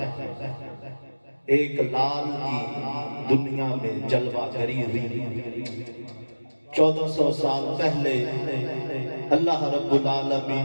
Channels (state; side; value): inverted; both; correlation -1.00